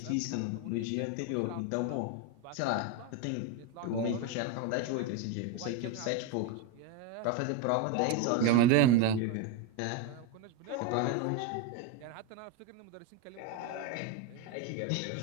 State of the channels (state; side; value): different; both; correlation 0.03